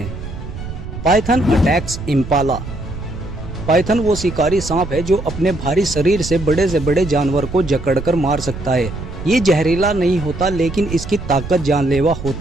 Python attacks Impala. पाइथन वो शिकारी सांप है जो अपने भारी शरीर से बड़े जानवर को जकड़कर मार सकता है। ये जहरीला नहीं होता, लेकिन इसकी ताकत जानलेवा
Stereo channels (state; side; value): noise; right; rumble, 9 dB below the sound